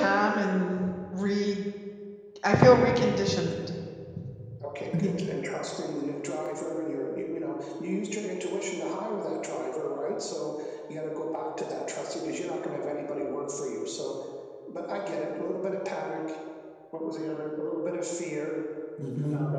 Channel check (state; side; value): identical; both; correlation 1.00